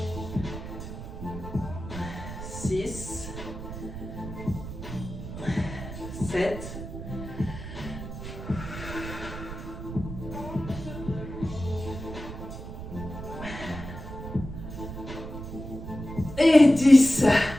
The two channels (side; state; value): right; noise; rumble, 9 dB below the sound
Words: 6, 7, et 10.